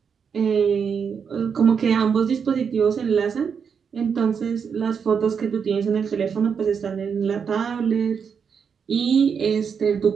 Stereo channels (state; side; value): quieter; left; 6.6 dB